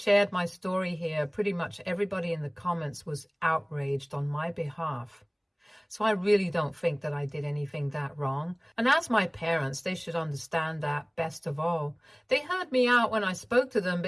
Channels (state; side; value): identical; both; correlation 1.00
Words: my story here, pretty much everybody in the comments was outraged on my behalf. So I really don't think that I did anything that wrong. And as my parents, they should understand that best of all. They heard me out when I spoke to them,